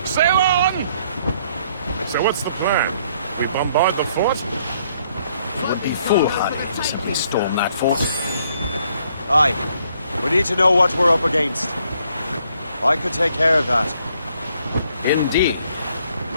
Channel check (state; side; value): inverted; both; correlation -0.68